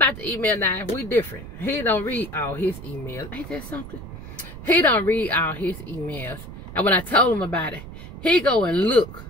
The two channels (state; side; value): noise; right; rumble, 12 dB below the sound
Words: the email. Now we different. He don't read all his emails. Ain't that something? He don't read all his emails. And when I told him about it, he go and look,